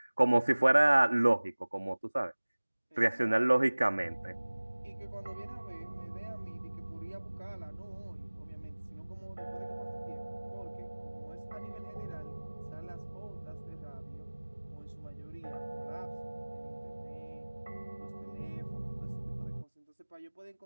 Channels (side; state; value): both; inverted; correlation -1.00